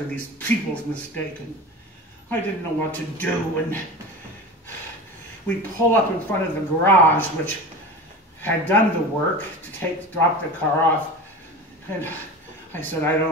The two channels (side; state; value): both; normal; correlation 0.31